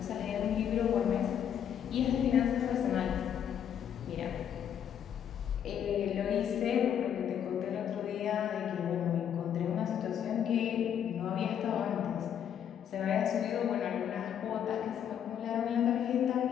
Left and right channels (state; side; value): quieter; right; 9.1 dB